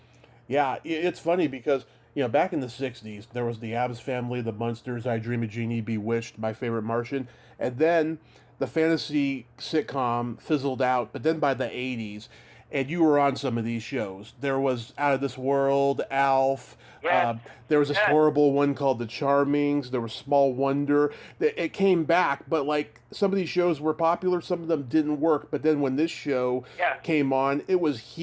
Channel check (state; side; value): identical; both; correlation 1.00